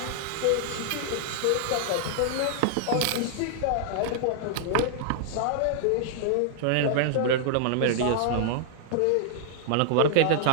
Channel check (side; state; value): both; different; correlation -0.01